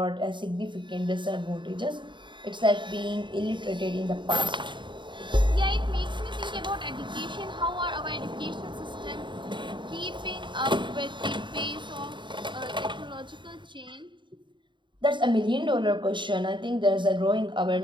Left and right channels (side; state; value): left; late; 0.23 ms